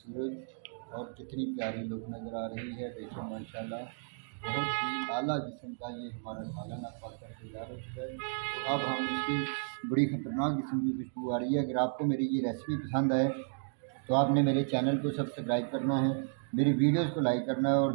और कितनी प्यारी लुक नज़र आ रही है। देखिए माशाल्लाह बहुत ही आला किस्म का ये हमारा सालन अब पक कर तैयार हो चुका है। तो अब हम इसकी बड़ी ख़तरनाक किस्म की खुशबू आ रही है। अगर आपको मेरी ये रेसिपी पसंद आए तो आपने मेरे चैनल को सब्सक्राइब करना है, मेरी वीडियोस को लाइक करना है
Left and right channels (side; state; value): left; silent; digital silence